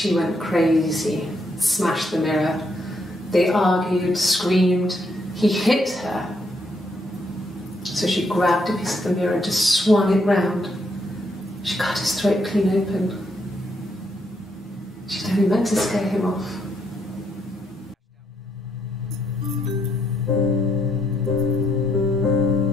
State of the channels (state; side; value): normal; both; correlation 0.75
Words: went crazy, smashed the mirror. They argued, screamed. He hit her. So she grabbed a piece of the mirror and just swung it round. She cut his throat clean open. She'd only meant to scare him off.